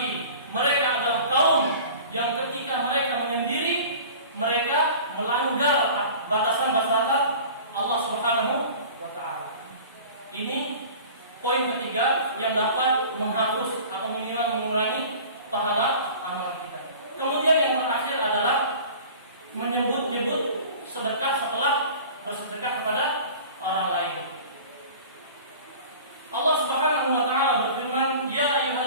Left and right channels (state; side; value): inverted; both; correlation -0.42